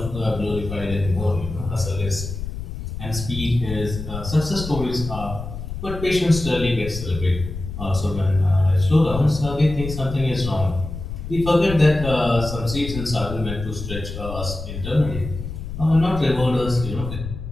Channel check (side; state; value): left; noise; rumble, 8 dB below the sound